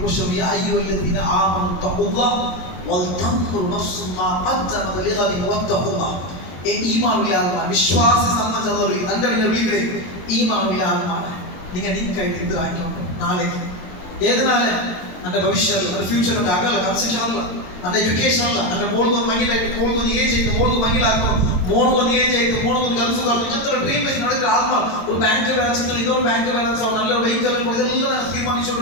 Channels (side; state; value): right; late; 22 ms